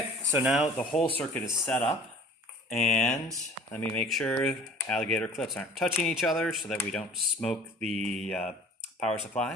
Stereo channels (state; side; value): normal; both; correlation 0.47